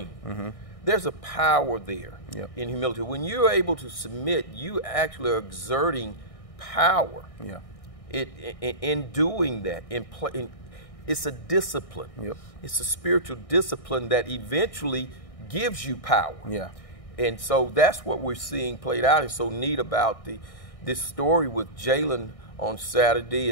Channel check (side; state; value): right; late; 1.6 ms